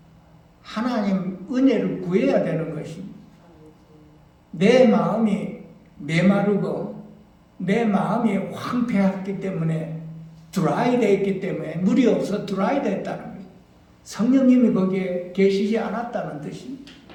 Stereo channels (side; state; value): both; identical; correlation 1.00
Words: 하나님 은혜를 구해야 되는 것입니다. 내 마음이 메마르고 내 마음이 황폐했기 때문에 드라이 되어 있기 때문에 물이 없어 드라이 됐다는 거예요. 성령님이 거기에 계시지 않았다는 뜻입니다.